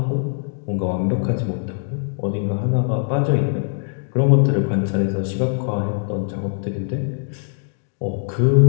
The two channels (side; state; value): right; silent; digital silence